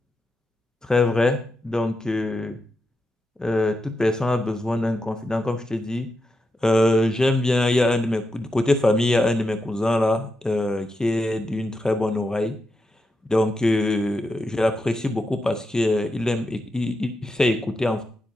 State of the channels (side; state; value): both; normal; correlation 0.86